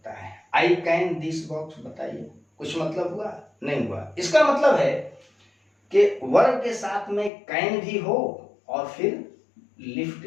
है। आई कैन दिस बॉक्स, बताइए कुछ मतलब हुआ? नहीं हुआ। इसका मतलब है कि वर्ब के साथ में कैन भी हो और फिर लिफ्ट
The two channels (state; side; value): drops out; right; at 7.3 s